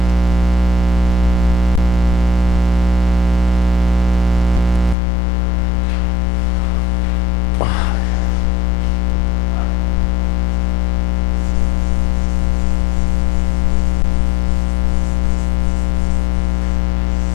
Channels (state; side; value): drops out; right; at 5.0 s